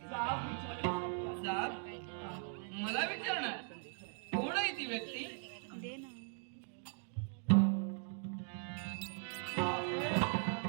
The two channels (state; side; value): silent; left; 51 dB below the other